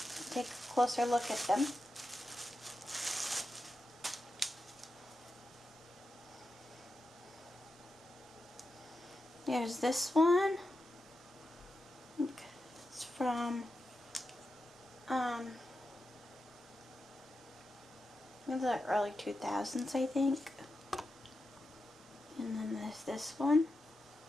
take a closer look at them. There's this one. It's from in the early 2000s, I think. And then there's this one.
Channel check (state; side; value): normal; both; correlation 0.89